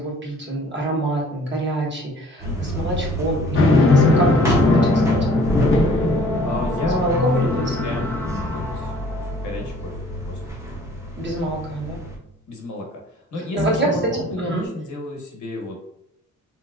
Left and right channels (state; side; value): normal; both; correlation 0.54